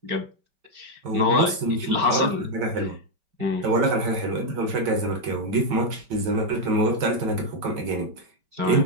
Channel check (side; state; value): left; late; 5.1 ms